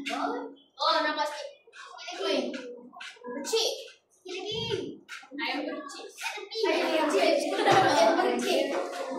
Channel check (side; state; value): both; identical; correlation 1.00